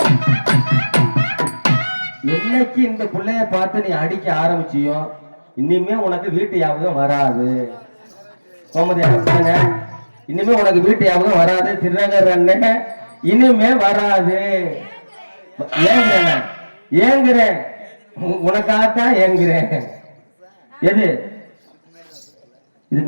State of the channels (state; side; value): inverted; both; correlation -1.00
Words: என்னைக்கு இந்த பிள்ளைய பார்த்து நீ அடிக்க ஆரம்பிச்சியோ இனிமே உனக்கு வீட்டு ஞாபகம் வராது. இனிமே உனக்கு வீட்டு ஞாபகம் வராது. திருநகர் அண்ணன் இனிமே வராது. ஏங்குறேன் ஏங்குறேன் உனக்காகத்தான் ஏங்குறேன். எது